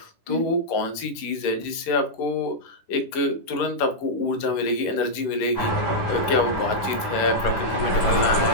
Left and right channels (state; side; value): late; right; 11 ms